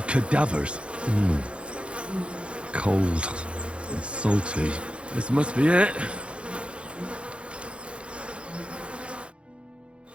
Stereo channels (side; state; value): left; late; 0.059 ms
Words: cadavers. Cold and salty. This must be it.